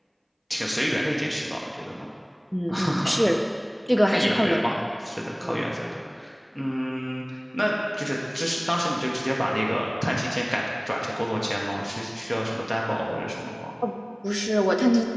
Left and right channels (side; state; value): both; identical; correlation 1.00